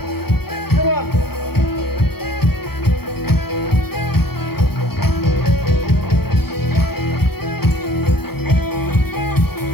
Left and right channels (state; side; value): late; right; 0.96 ms